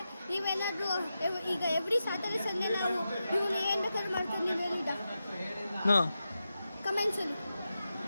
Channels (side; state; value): both; inverted; correlation -0.90